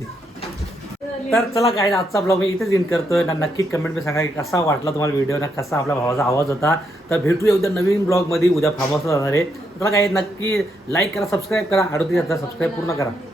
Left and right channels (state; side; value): normal; both; correlation 0.78